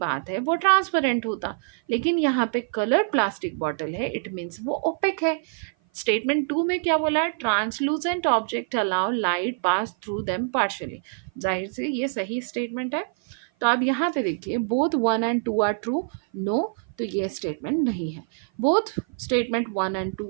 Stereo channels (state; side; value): silent; left; 55 dB below the other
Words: है वो ट्रांसपेरेंट होता, लेकिन यहाँ पे कलर्ड प्लास्टिक बॉटल है, इट मीन्स वो ओपेक है। स्टेटमेंट 2 में क्या बोला है? Translucent object allow light pass through them partially. जाहिर से ये सही स्टेटमेंट है। तो अब यहाँ पे देखिए, both 1 and 2 are true. No, तो ये स्टेटमेंट नहीं है। Both statement 1 and